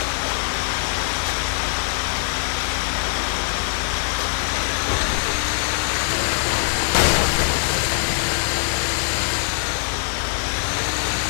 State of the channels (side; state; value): right; silent; digital silence